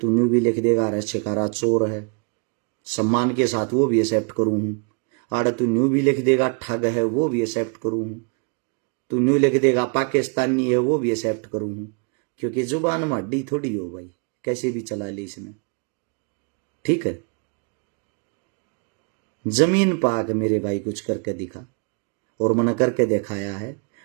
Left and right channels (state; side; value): quieter; left; 36.4 dB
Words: न्यू भी लिख देगा अरे शिकारा चोर है, सम्मान के साथ वो भी एक्सेप्ट करूं हूं। आड़ा तू न्यू भी लिख देगा ठग है, वो भी एक्सेप्ट करूं हूं। तू न्यू लिख देगा पाकिस्तानी है, वो भी एक्सेप्ट करूं हूं। क्योंकि जुबान में हड्डी थोड़ी हो भाई, कैसे भी चला ले इसने, ठीक है। जमीन पाक मेरे भाई कुछ करके दिखा, और मैंने करके दिखाया है।